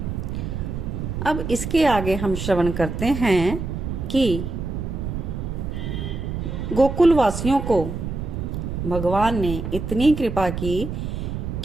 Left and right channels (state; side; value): noise; right; rumble, 4 dB below the sound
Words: अब इसके आगे हम श्रवण करते हैं कि गोकुल वासियों को भगवान ने इतनी कृपा की